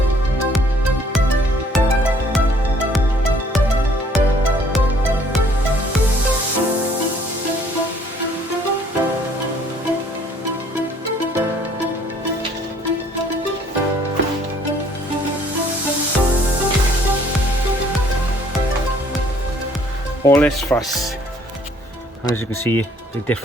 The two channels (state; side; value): normal; both; correlation 0.60